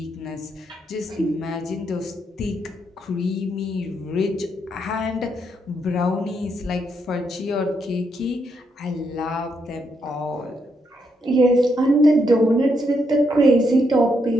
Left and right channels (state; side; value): normal; both; correlation 0.78